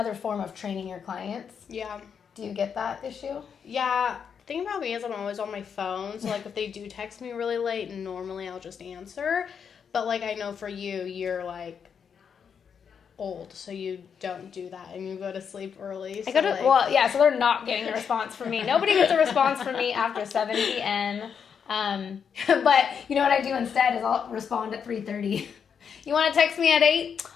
form of training your clients. Yeah. Do you get that issue? Yeah. The thing about me is I'm always on my phone. So, like, if they do text me really late, normally I'll just answer. But, like, I know for you, you're, like, old, so you don't do that, and you go to sleep early. So so they're not getting a response from me. Nobody gets a response from me after 7 p.m. But you know what I do instead is I'll respond at 3:30. You want to text me at 8?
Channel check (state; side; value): quieter; right; 7.0 dB